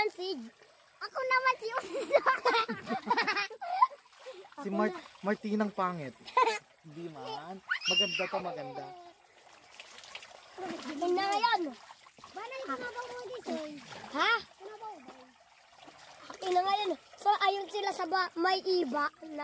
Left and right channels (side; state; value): both; identical; correlation 1.00